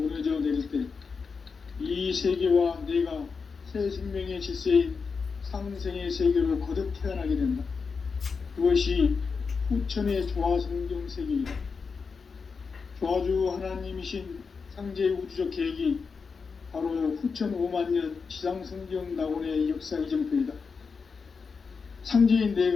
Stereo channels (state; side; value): quieter; right; 5.2 dB